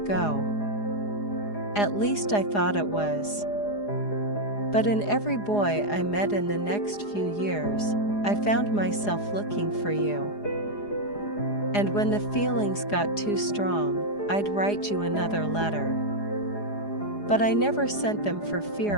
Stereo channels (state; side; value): late; right; 4.9 ms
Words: go. At least I thought it was. But in every boy I met in the next few years, I found myself looking for you. And when the feelings got too strong, I'd write you another letter. But I never sent them for